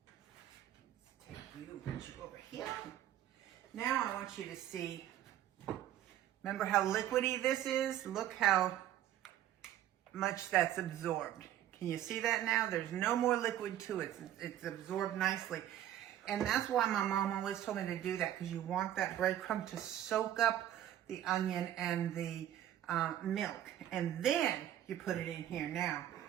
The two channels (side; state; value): left; quieter; 11.9 dB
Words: over here. Now I want you to see, remember how liquidy this is? Look how much that's absorbed. Can you see that now? There's no more liquid to it. It's absorbed nicely. And that's why my mom always told me to do that, because you want that breadcrumb to soak up the onion and the milk. And then you put it in here. Now,